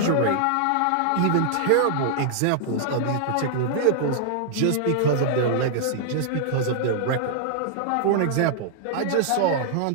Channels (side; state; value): both; different; correlation -0.01